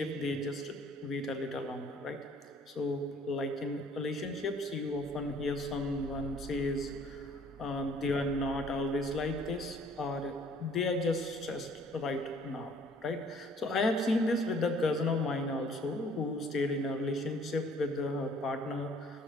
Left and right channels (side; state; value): both; normal; correlation 0.57